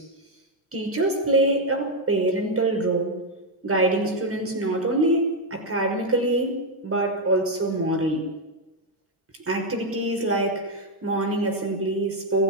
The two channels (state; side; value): normal; both; correlation 0.02